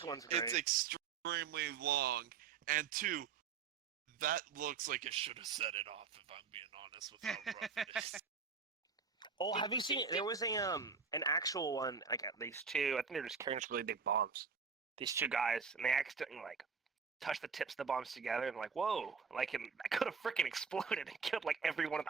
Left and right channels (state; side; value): quieter; left; 5.8 dB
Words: one's great. it's extremely long, and two, that looks like it should have set it off, if I'm being honest with how rough it is. Oh, have you seen it? There was an actual one, like at least two. I think they're just carrying just really big bombs. These two guys, and they accidentally like touch the tips of the bombs together, and like, whoa, like I could have freaking exploded and killed like everyone in